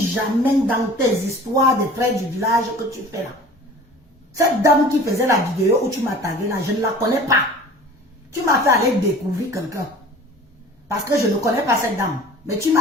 jamais dans tes histoires des frères du village que tu fais là. Cette dame qui faisait la vidéo où tu m'as tagué là, je ne la connais pas. Tu m'as fait aller découvrir quelqu'un. Parce que je ne connais pas cette dame. Mais tu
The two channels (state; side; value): normal; both; correlation 0.43